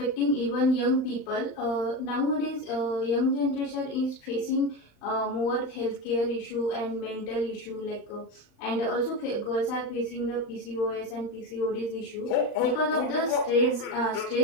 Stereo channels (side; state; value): right; late; 35 ms